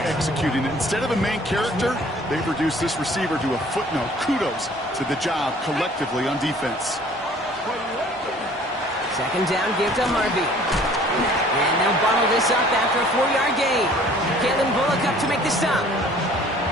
executing it. Instead of a main character, they've reduced this receiver to a footnote. Kudos to the job collectively on defense. Second down, give to Harvey. And they'll bottle this up after a 4-yard gain. Kalen Bullock up to make the stop.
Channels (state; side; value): normal; both; correlation 0.53